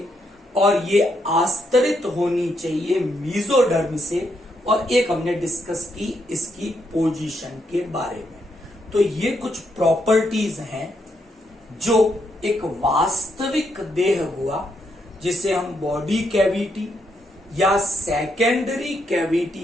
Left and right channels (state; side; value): normal; both; correlation 0.78